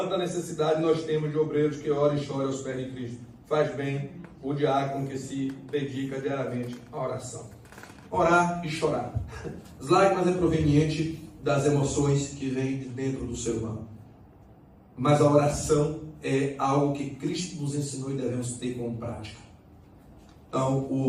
necessidade nós temos de obreiros que oram e choram aos pés de Cristo. Faz bem o diácono que se dedica diariamente à oração. Orar e chorar. As lágrimas é proveniente das emoções que vêm de dentro do ser humano. Mas a oração é algo que Cristo nos ensinou e devemos ter como prática. Então,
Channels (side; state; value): both; identical; correlation 1.00